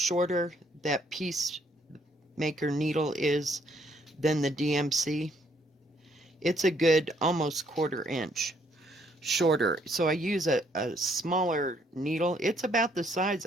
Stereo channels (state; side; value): normal; both; correlation 0.68